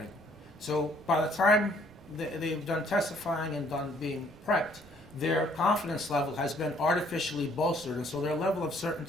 So by the time they've done testifying and done being prepped, their confidence level has been artificially bolstered, and so their level of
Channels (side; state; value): right; noise; rumble, 24 dB below the sound